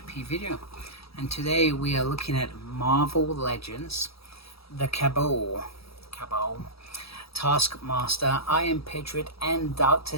P video, and today we are looking at Marvel Legends, the Cabal, Taskmaster, Iron Patriot, and Doctor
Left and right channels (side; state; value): right; late; 0.77 ms